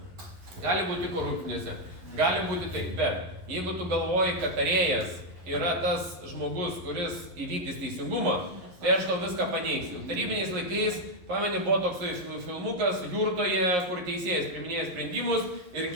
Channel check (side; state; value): left; late; 11 ms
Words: Gali būti korupcinėse, gali būti taip, bet jeigu tu galvoji, kad tarėjas yra tas žmogus, kuris įvykdys teisingumą, tai aš tau viską paneigsiu. Tarybiniais laikais, pameni, buvo toksai filmukas Jurtoje, kur teisėjas priiminėja sprendimus ir